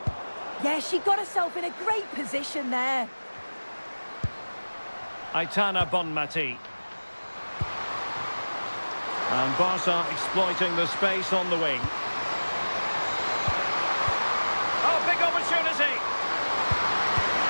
Yeah, she got herself in a great position there. Aitana Bonmati. And Barca exploiting the space on the wing. Oh, big opportunity.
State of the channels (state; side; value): inverted; both; correlation -1.00